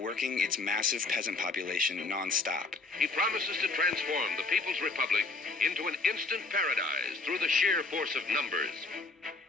its massive peasant population non-stop. He promises to transform the People's Republic into an instant paradise through the sheer force of numbers.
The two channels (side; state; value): right; quieter; 3.6 dB